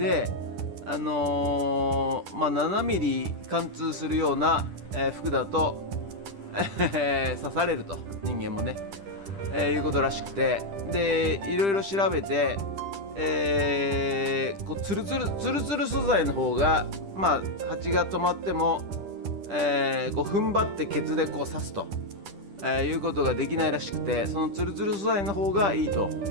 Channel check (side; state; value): left; late; 10 ms